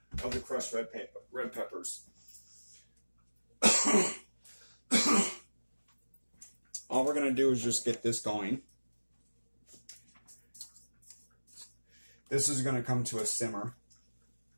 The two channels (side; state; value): both; inverted; correlation -1.00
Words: of the crushed red peppers. All we're going to do is just get this going. This is going to come to a simmer.